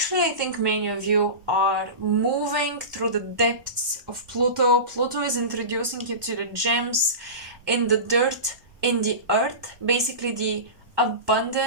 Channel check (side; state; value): left; late; 1.2 ms